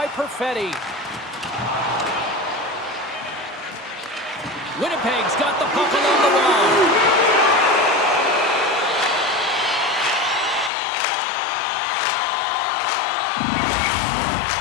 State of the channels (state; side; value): drops out; right; at 10.7 s